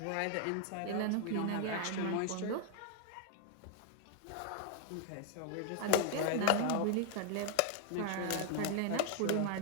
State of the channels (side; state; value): both; different; correlation 0.00